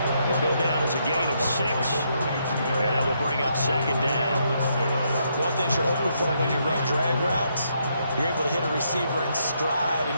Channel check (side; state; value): both; inverted; correlation -0.76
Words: He'll go down as a gain of 6. And that will bring up 2nd down. One thing you're hoping for when you run drag routes, you're able to hit a receiver in stride,